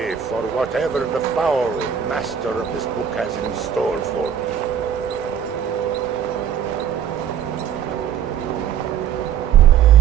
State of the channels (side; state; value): left; quieter; 8.6 dB